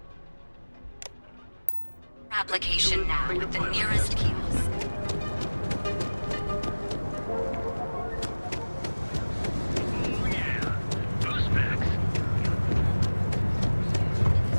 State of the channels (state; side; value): inverted; both; correlation -1.00